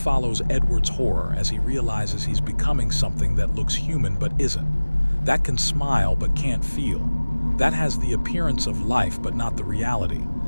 Edward's horror as he realizes he's becoming something that looks human but isn't, that can smile but can't feel, that has the appearance of life but not the reality.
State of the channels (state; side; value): inverted; both; correlation -1.00